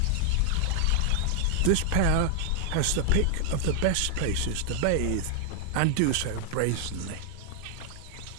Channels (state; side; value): different; both; correlation 0.00